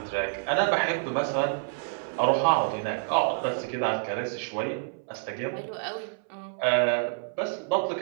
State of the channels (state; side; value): silent; left; 59 dB below the other